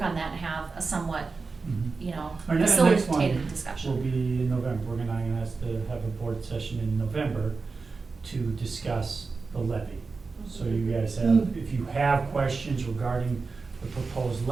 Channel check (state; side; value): quieter; left; 4.3 dB